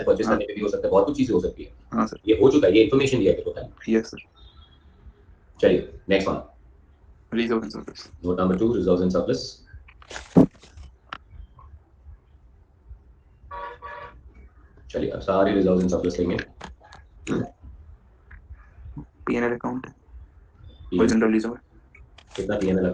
परचेज हाँ करने पे भी हो सकता है, बहुत कुछ चीजें हो सकती है। हाँ सर। ये हो चुका है, ये इन्फॉर्मेशन दिया है तेरे को खाली। Yes sir. चलिए next one, reserve and surplus. Note number 2, reserves and surplus. चलिए अब सारे रिजर्व्स एंड सरप्लस लेंगे। पीएनएल अकाउंट और PNL जनरल रिजर्व। कितना पीएनएल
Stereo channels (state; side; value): identical; both; correlation 1.00